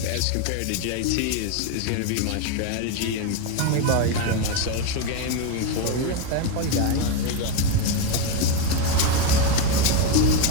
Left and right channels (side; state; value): both; different; correlation 0.03